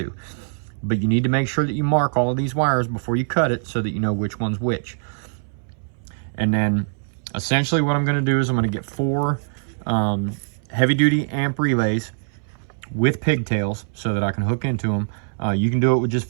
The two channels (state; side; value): silent; left; 64 dB below the other